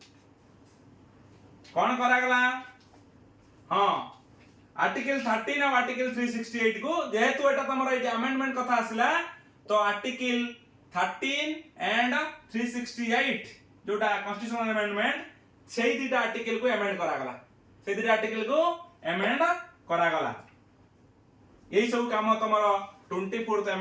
कौन करागला? हाँ, आर्टिकल 13 और आर्टिकल 368 को जेहेतु एटा तमरा एटा अमेंडमेंट कथा आसिला तो आर्टिकल 13 एंड 368 जोटा कॉन्स्टिट्यूशनल अमेंडमेंट सेही दिटा आर्टिकल को अमेंड करागला, सेही दिटा आर्टिकल को अमेंड करागला। यही सब काम तमरा 24th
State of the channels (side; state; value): both; identical; correlation 1.00